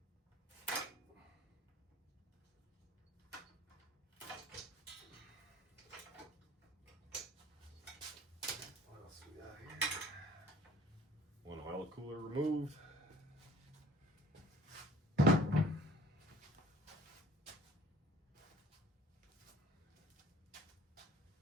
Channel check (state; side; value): normal; both; correlation 0.51